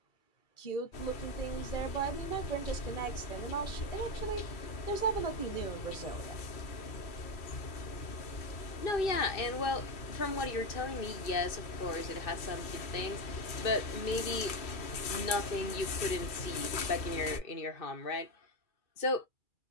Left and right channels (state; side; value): late; right; 2.4 ms